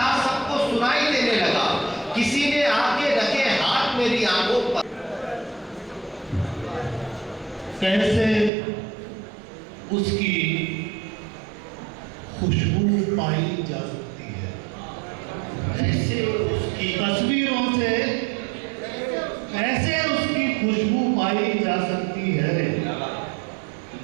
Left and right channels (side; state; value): left; drops out; at 8.5 s